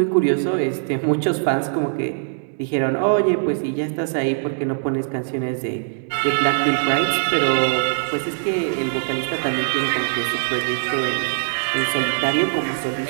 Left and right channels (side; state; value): left; silent; digital silence